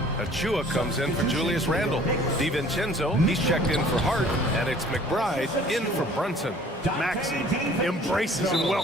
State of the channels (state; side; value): normal; both; correlation 0.52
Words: Achua comes in for Julius Randle. DiVincenzo, he's checked in for Hart. And it's McBride in for Brunson. Maxey embraces and